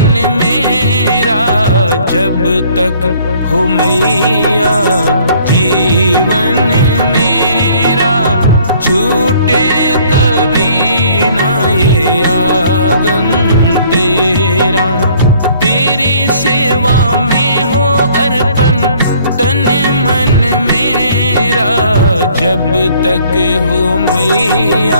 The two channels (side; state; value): both; inverted; correlation -0.58